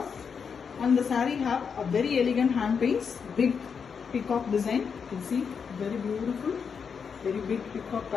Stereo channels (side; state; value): right; quieter; 6.3 dB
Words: And the saree have a very elegant hand paints, big peacock design. You can see very beautiful, very big peacock